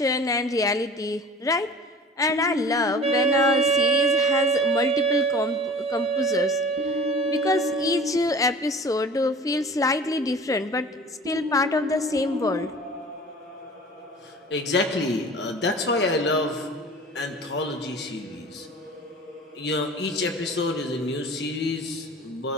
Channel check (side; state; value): both; normal; correlation 0.42